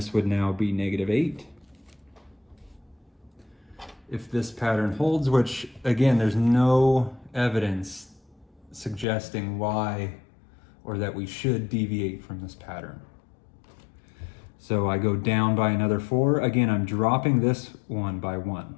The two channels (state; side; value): drops out; right; at 9.1 s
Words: would now be negative 8. if this pattern holds, which again, there's no evidence suggesting why or that we should deviate from this pattern. So I go down by another 4. Again, I'm dropping this one by 1.